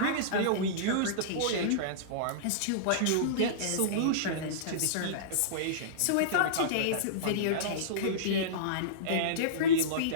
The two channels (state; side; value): different; both; correlation -0.04